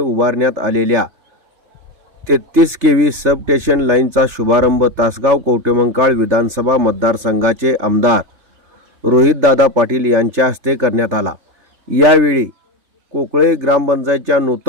आलेल्या 33 केव्ही सबस्टेशन लाईनचा शुभारंभ तासगाव कवठेमंकाळ विधानसभा मतदारसंघाचे आमदार रोहितदादा पाटील यांच्या हस्ते करण्यात आला. यावेळी कोकळे ग्रामपंचायतच्या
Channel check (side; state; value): left; late; 3.4 ms